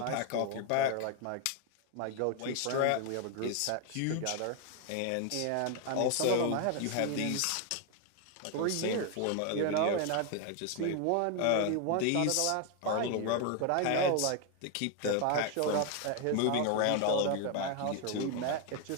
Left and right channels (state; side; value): different; both; correlation 0.01